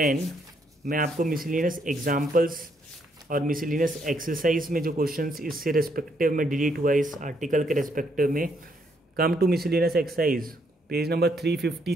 मैं आपको मिसलिनियस एग्जाम्पल्स और मिसलिनियस एक्सरसाइज में जो क्वेश्चंस इससे रेस्पेक्टिव में डिलीट हुआ है इस आर्टिकल के रेस्पेक्टिव में, come to miscellaneous exercise page number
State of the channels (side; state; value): both; normal; correlation 0.73